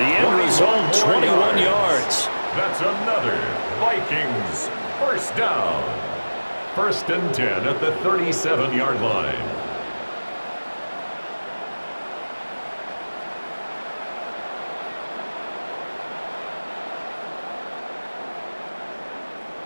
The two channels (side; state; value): both; inverted; correlation -1.00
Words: end result, 21 yards. That's another Vikings first down. 1st and 10 at the 37-yard line.